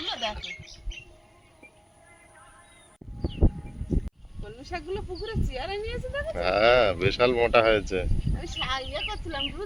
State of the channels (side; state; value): both; identical; correlation 1.00